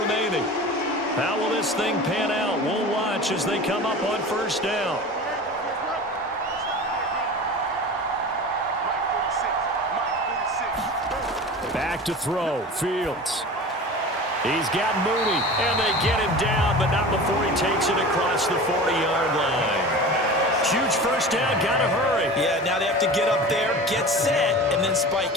How will this thing pan out? We'll watch as they come up on first down. Back to throw. Fields. He's got Mooney, and they get him down, but not before he takes it across the 40-yard line. Huge first down, gotta hurry. Yeah, now they have to get up there, get set, and then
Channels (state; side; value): normal; both; correlation 0.35